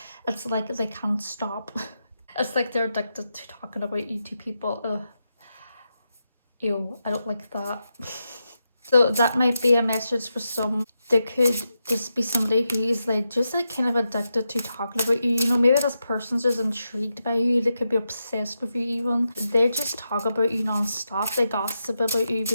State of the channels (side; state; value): both; inverted; correlation -0.87